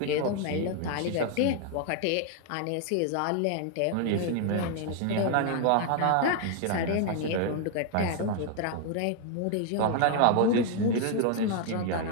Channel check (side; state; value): both; different; correlation 0.00